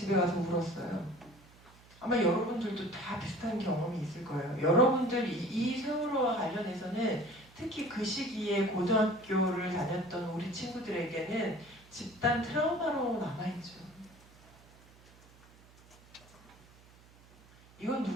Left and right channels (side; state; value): right; noise; hum, 25 dB below the sound